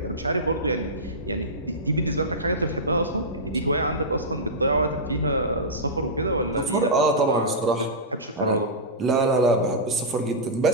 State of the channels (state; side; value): normal; both; correlation -0.14